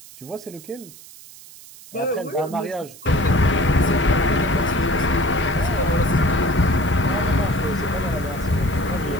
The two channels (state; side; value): noise; right; hiss, 19 dB below the sound